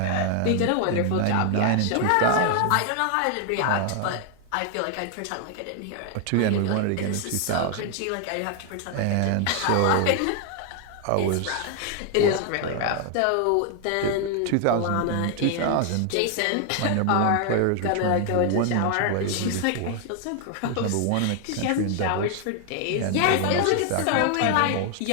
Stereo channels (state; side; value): different; both; correlation 0.00